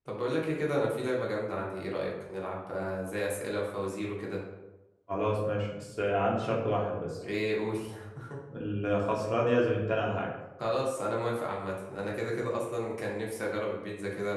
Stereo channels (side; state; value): both; identical; correlation 1.00